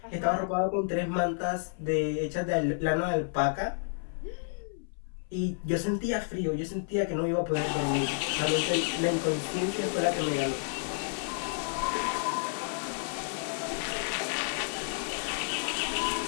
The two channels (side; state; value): right; silent; 57 dB below the other